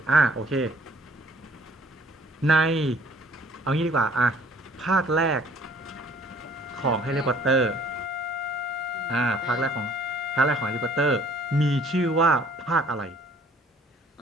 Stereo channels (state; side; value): normal; both; correlation 0.57